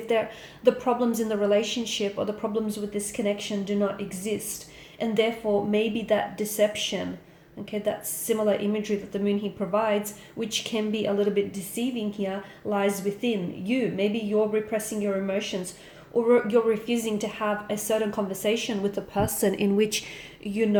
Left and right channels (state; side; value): identical; both; correlation 1.00